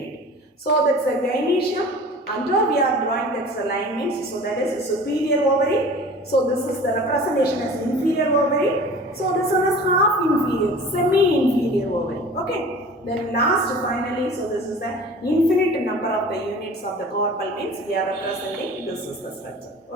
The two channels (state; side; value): normal; both; correlation 0.42